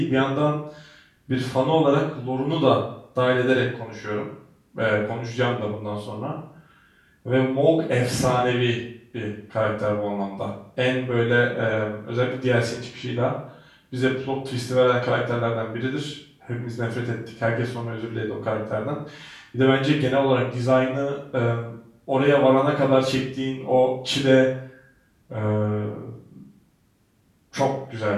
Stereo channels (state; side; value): identical; both; correlation 1.00